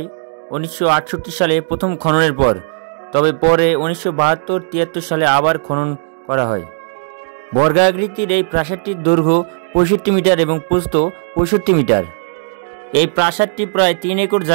1968 সালে প্রথম খননের পর, তবে পরে 1972-73 সালে আবার খনন করা হয়। বর্গাকৃতির এই প্রাসাদটির দৈর্ঘ্য 65 মিটার এবং প্রস্থ 65 মিটার। এই প্রাসাদটি প্রায় 3 একর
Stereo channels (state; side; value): silent; left; digital silence